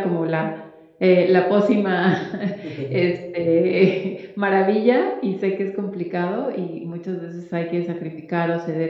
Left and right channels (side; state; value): both; identical; correlation 1.00